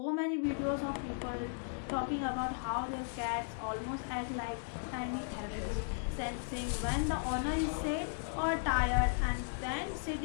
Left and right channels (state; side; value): silent; right; digital silence